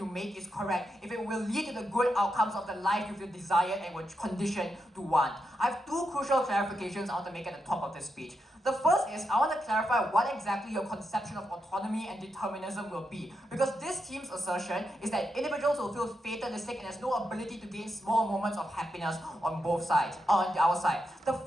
make is correct, if it will lead to the good outcomes of the life you desire and were conditioned to want. I have 2 crucial clarifications I want to make at the top of this speech. The first is, I want to clarify what exactly your conception of autonomy and determinism will be. Because this team's assertion is that individuals will feel fatalistic and there's no ability to gain small moments of happiness on both sides, on our side. The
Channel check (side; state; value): both; normal; correlation 0.85